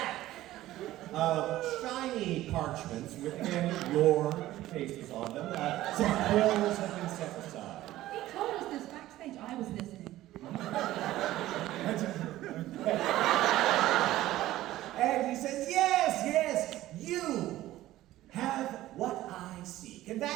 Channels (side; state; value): left; quieter; 15.3 dB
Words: of shiny parchments with again your faces on them. Some quills have been set aside. He told us this backstage. I was listening. And he says, yes, you have what I seek, and